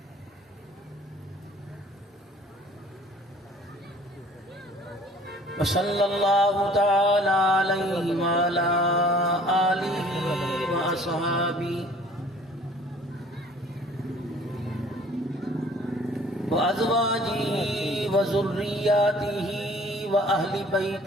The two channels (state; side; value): normal; both; correlation 0.53